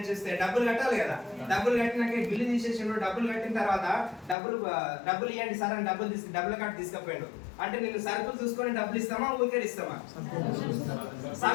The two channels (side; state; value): right; drops out; at 4.4 s